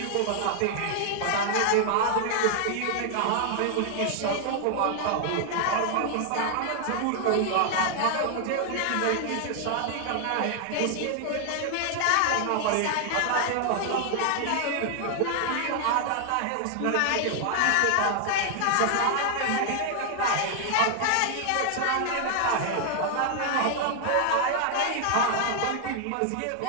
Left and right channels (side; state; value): both; different; correlation 0.00